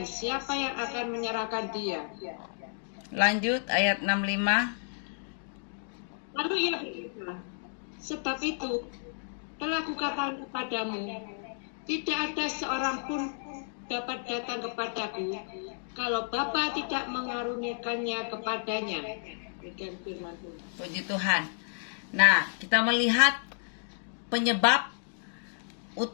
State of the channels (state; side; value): silent; right; digital silence